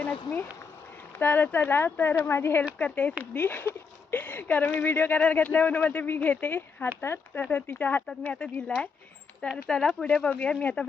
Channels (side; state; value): right; quieter; 5.3 dB